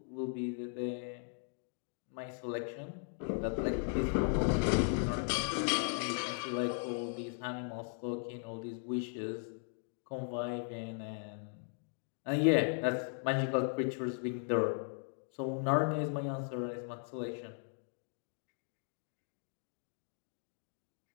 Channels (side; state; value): right; silent; 53 dB below the other